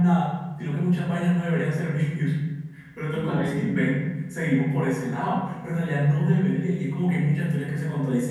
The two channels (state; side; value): identical; both; correlation 1.00